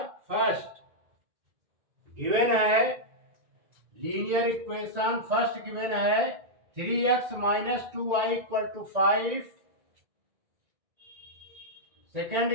फर्स्ट गिवन है। लीनियर इक्वेशन फर्स्ट गिवन है 3x minus 2y equal to 5। Second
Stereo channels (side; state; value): left; late; 1.9 ms